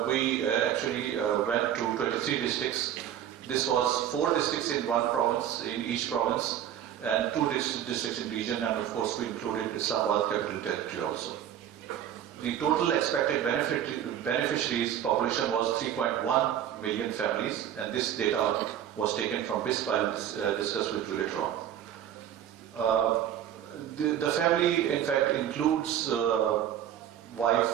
actually went to 23 districts. This was 4 districts in one province, in each province, and 2 districts in region, and of course we included Islamabad Capital Territory also. The total expected beneficiaries population was 3.1 million families, and this data was taken from BISP. I'll discuss with you later on. The family, in fact, includes wife,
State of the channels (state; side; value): quieter; left; 10.4 dB